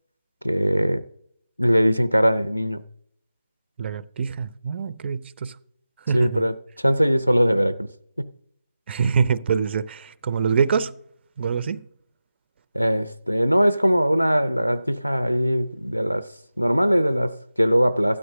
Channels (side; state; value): both; inverted; correlation -0.94